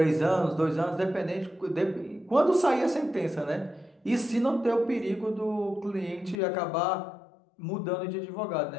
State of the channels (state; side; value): drops out; right; at 6.4 s